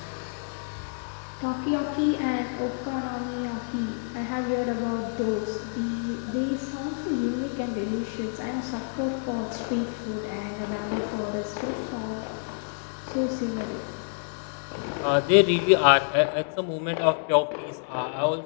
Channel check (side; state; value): right; silent; digital silence